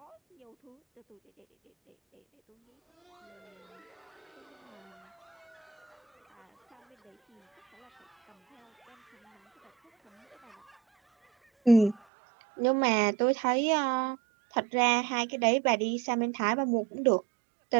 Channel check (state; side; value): drops out; left; at 12.0 s